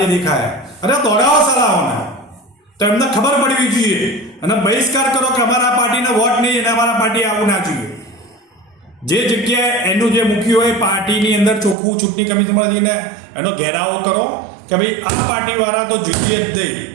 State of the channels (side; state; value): left; drops out; at 11.8 s